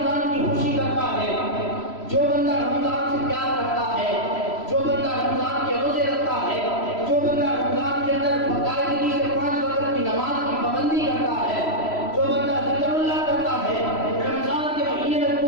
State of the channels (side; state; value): right; late; 3.0 ms